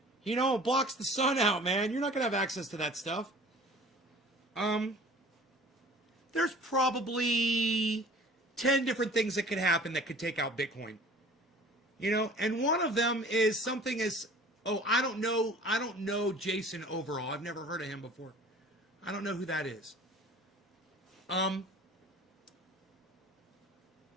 It blocks the sun out, man. You're not going to have access to that stuff. There's probably 10 different things that could happen that could take out Bitcoin. And one of them is something as, I don't know Jason overall. I've never heard of him before. I don't know who that is.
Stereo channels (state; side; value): normal; both; correlation 0.46